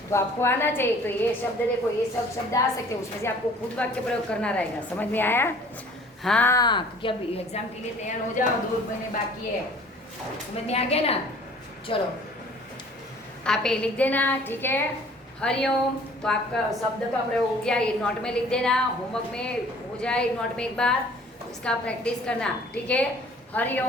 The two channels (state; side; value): normal; both; correlation 0.52